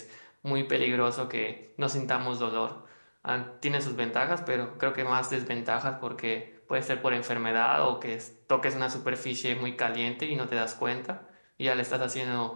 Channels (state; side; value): inverted; both; correlation -1.00